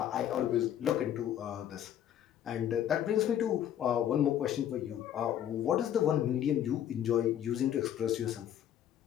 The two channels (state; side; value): quieter; right; 10.6 dB